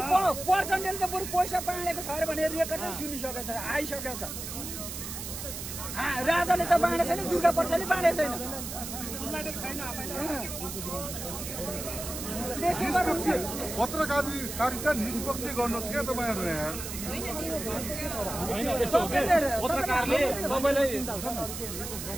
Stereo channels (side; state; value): right; noise; hiss, 7 dB below the sound